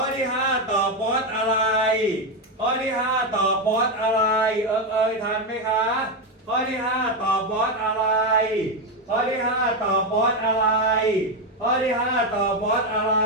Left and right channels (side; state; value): both; normal; correlation 0.08